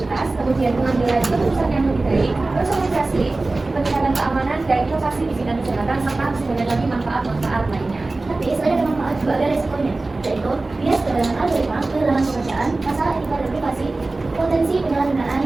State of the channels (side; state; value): left; quieter; 3.2 dB